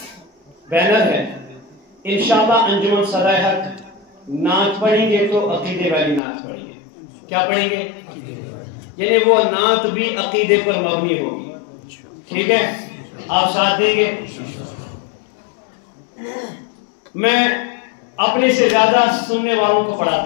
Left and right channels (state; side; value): drops out; right; at 6.2 s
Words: بینر ہے، انشاءاللہ انجمن صدائے حق نعت پڑھیں گے تو عقیدے والی نعت پڑھیں گے. کیا پڑھیں گے؟ یعنی وہ نعت بھی عقیدے پر مبنی ہوگی. ٹھیک ہے؟ آپ ساتھ دیں گے؟ میں اپنے سے زیادہ سننے والوں کو